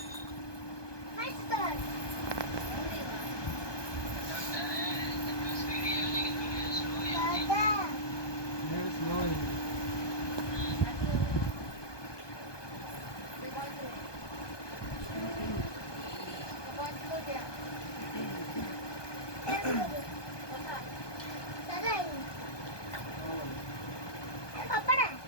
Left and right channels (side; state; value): right; late; 1.2 ms